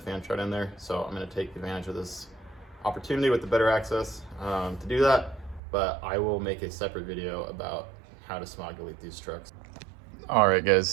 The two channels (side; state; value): left; drops out; at 5.6 s